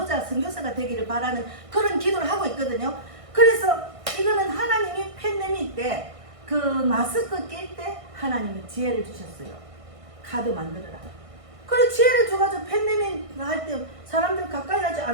선교사가 되기를 바라는 그런 기도를 하고 있거든요. 그래서 이거는 하나님이 팬데믹 때 그 마스크 낄 때 하나님이 지혜를 주셨어요. 카드 만들어라. 그래 지혜를 줘가지고 팬데믹 할 때 사람들 가까이 하지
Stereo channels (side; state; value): left; late; 1.6 ms